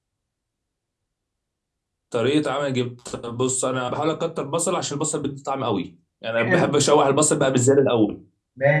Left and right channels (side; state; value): both; identical; correlation 1.00